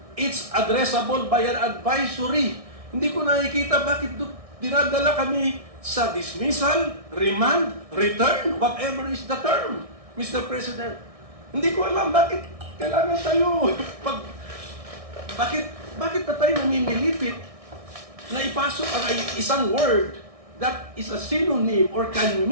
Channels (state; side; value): late; left; 1.6 ms